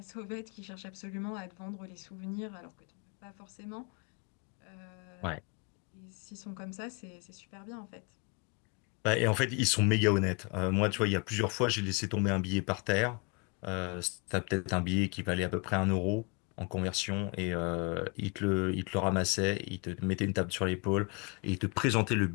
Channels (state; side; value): quieter; right; 31.9 dB